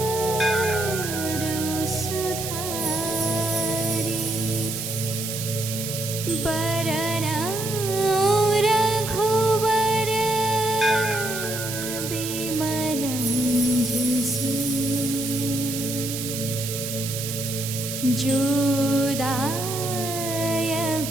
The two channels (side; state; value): right; noise; hiss, 6 dB below the sound